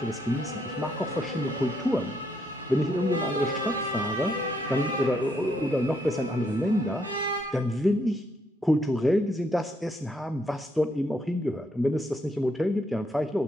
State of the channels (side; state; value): both; normal; correlation 0.74